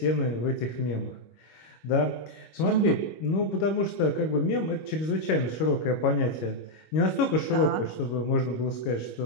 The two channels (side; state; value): right; late; 25 ms